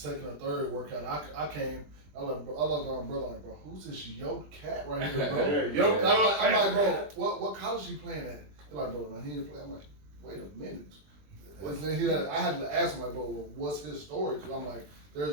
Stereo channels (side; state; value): left; late; 20 ms